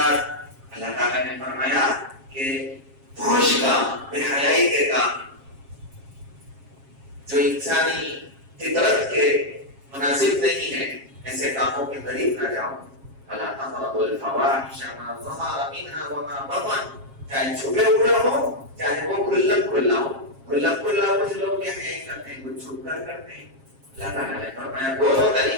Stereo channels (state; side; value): late; left; 7.4 ms